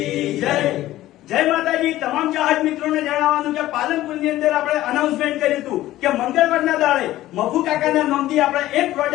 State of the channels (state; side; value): quieter; right; 15.1 dB